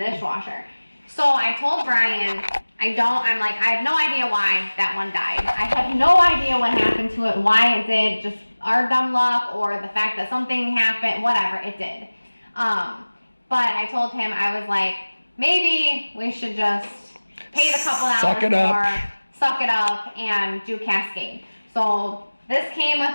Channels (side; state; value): both; inverted; correlation -1.00